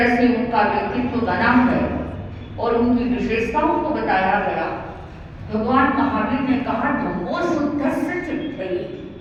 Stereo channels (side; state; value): both; identical; correlation 1.00